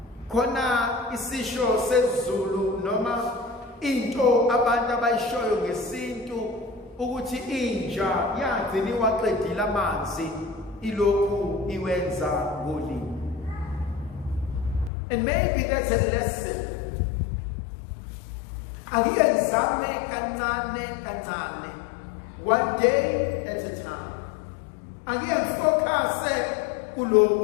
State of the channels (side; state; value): right; drops out; at 14.9 s